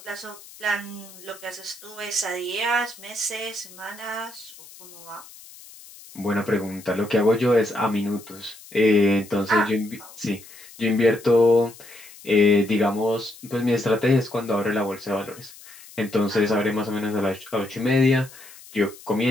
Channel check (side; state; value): left; noise; hiss, 20 dB below the sound